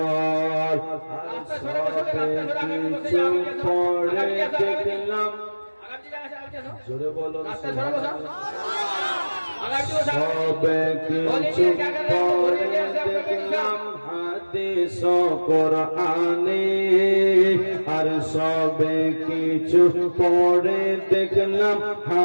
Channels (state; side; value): inverted; both; correlation -1.00